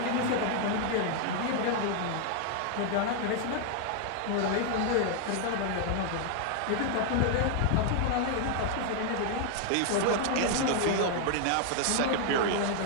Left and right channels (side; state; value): both; different; correlation 0.00